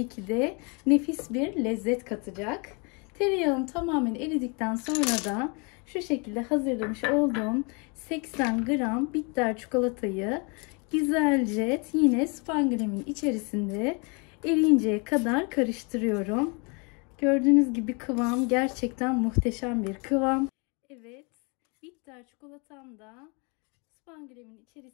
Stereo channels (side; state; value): right; quieter; 32.5 dB